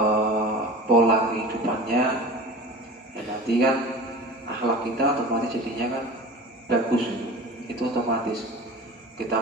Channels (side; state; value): both; normal; correlation 0.36